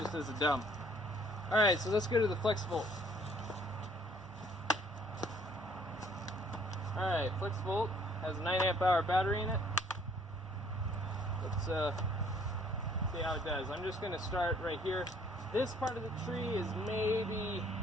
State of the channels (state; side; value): normal; both; correlation 0.60